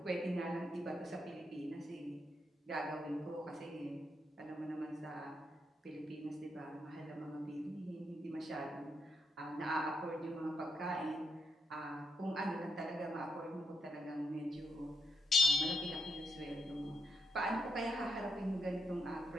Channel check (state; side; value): normal; both; correlation 0.81